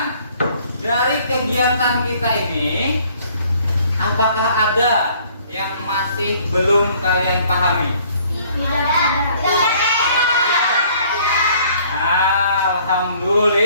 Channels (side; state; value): both; inverted; correlation -0.59